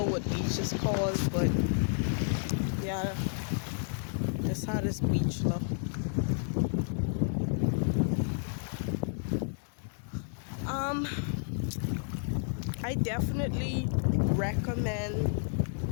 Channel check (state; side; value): silent; right; digital silence